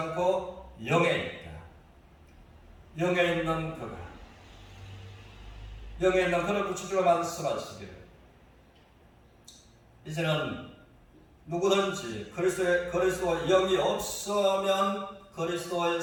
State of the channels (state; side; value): identical; both; correlation 1.00